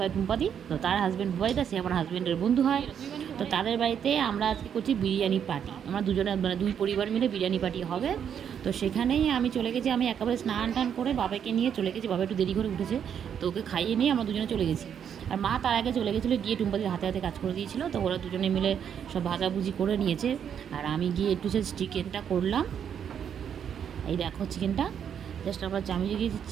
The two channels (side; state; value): left; quieter; 8.3 dB